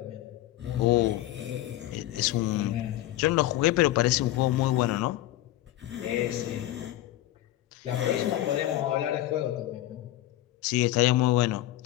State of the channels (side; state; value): right; quieter; 14.8 dB